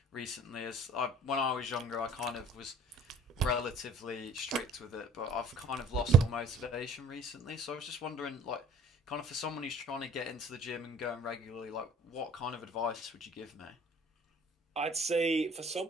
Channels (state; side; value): normal; both; correlation 0.52